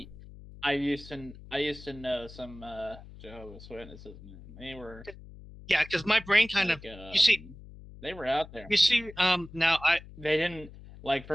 I used to know some Jehovah's Witnesses, man. They were, yeah, because my brain kind of you see, they were out there. You see, now they didn't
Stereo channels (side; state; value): left; noise; hum, 17 dB below the sound